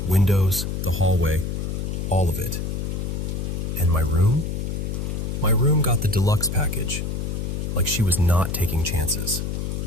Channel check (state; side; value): noise; left; hum, 2 dB below the sound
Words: windows, the hallway, all of it. And my room? My room got the deluxe package, like she was not taking chances.